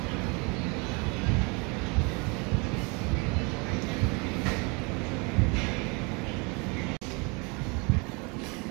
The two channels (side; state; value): left; quieter; 30.5 dB